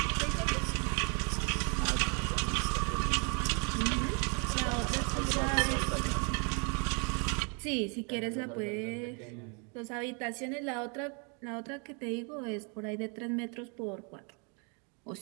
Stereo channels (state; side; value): quieter; left; 36.1 dB